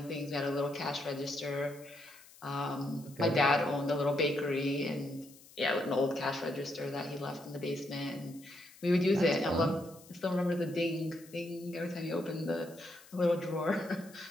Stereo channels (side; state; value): left; noise; hiss, 22 dB below the sound